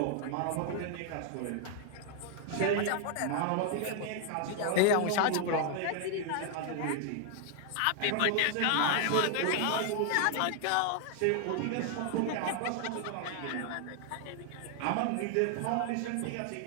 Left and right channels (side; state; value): both; different; correlation 0.00